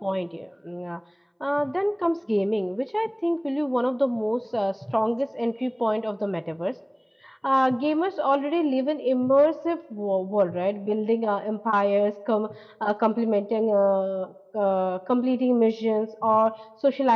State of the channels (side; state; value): both; identical; correlation 1.00